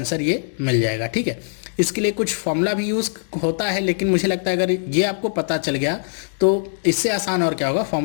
ये मिल जाएगा। ठीक है, इसके लिए कुछ फॉर्मूला भी यूज़ होता है, लेकिन मुझे लगता है अगर ये आपको पता चल गया तो इससे आसान और क्या होगा।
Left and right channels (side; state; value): right; silent; digital silence